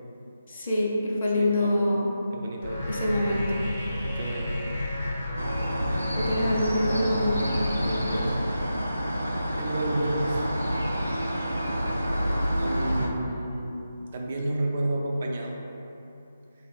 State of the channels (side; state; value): both; inverted; correlation -0.88